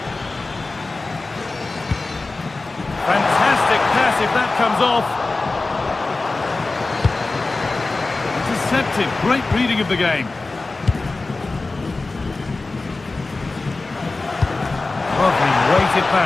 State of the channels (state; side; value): quieter; right; 3.5 dB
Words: Fantastic pass if that comes off. Intercepted. Great reading of the game. Lovely weighted